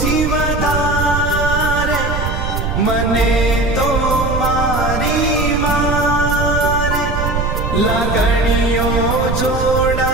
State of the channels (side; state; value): right; noise; rumble, 2 dB below the sound